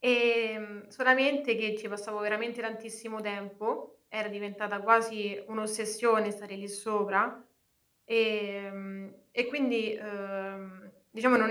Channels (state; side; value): identical; both; correlation 1.00